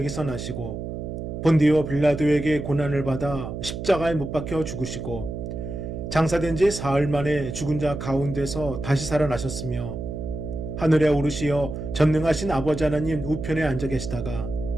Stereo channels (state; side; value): noise; right; hum, 6 dB below the sound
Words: 나시고 본디오 빌라도에게 고난을 받아 십자가에 못 박혀 죽으시고 장사된 지 사흘 만에 죽은 자 가운데서 다시 살아나셨으며 하늘에 오르시어 전능하신 아버지 하나님 우편에 앉아 계시다가